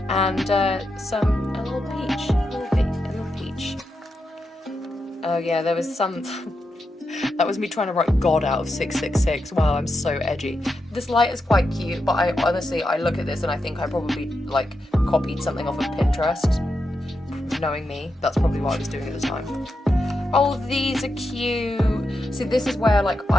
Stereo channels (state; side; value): normal; both; correlation 0.86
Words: and a little peach. Oh yeah, there was some... That was me trying to write God out of 666. Wow, I'm so edgy. This light is quite cute, but I honestly look at this and I think I probably like copied something off of Pinterest. Knowing me, that's probably what I was doing at the time. Oh, these are cute. See, this is where like